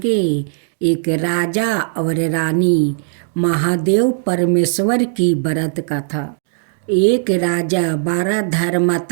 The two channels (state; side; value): silent; left; digital silence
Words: एक राजा और रानी महादेव परमेश्वर की व्रत कथा। एक राजा 12